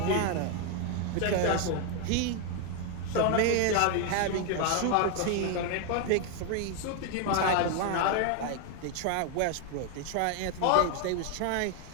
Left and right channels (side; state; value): both; different; correlation 0.01